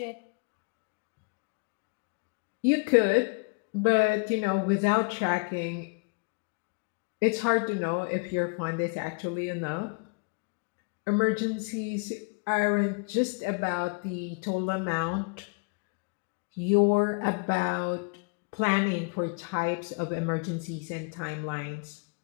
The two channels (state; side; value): quieter; right; 31.9 dB